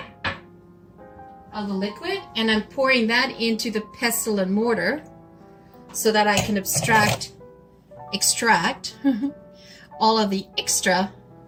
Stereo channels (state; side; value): identical; both; correlation 1.00